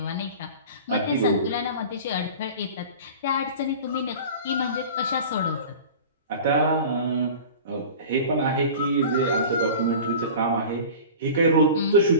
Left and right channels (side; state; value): both; inverted; correlation -0.37